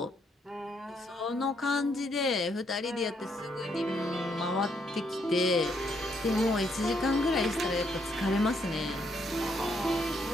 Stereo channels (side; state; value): both; normal; correlation 0.74